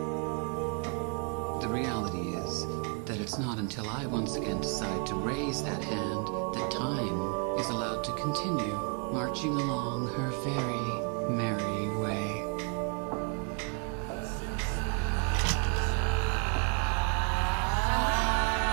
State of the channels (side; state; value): left; quieter; 35.1 dB